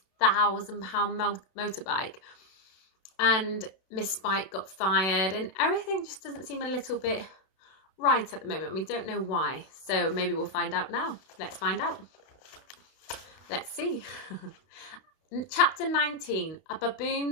motorbike. And Miss Spike got fired, and everything just doesn't seem a little bit right at the moment. We don't know why, so maybe we'll find out now. Let's find out. Let's see. Chapter 19, A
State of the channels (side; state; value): right; late; 32 ms